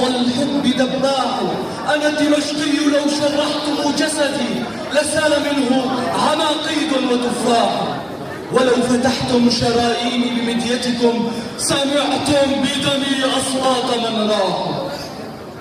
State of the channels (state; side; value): identical; both; correlation 1.00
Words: الحب دباح. أنا دمشقي لو شرحتم جسدي لسال منه عناقيد وتفاح، ولو فتحتم شراييني بمديتكم سمعتم بدمي أصوات من راح.